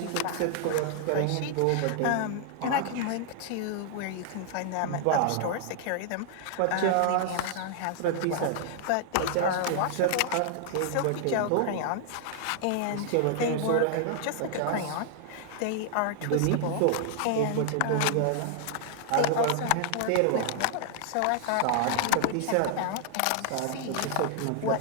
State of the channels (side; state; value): both; different; correlation 0.00